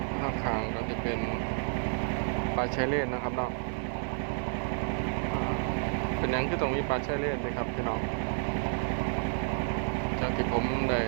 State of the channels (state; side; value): silent; left; 57 dB below the other